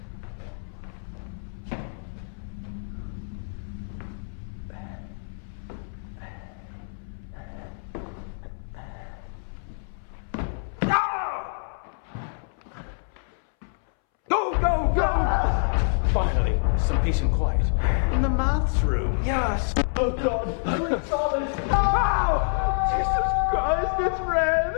Go! Finally, some peace and quiet. In the maths room. Yes. Oh God, we saw this. Oh! Jesus Christ, it's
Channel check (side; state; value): right; silent; 60 dB below the other